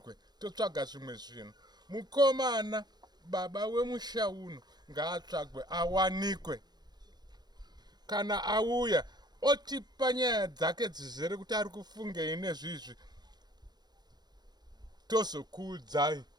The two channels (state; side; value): late; left; 0.20 ms